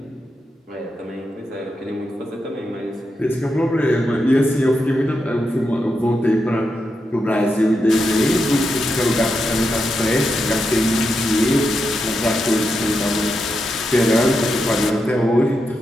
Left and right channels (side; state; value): both; normal; correlation 0.86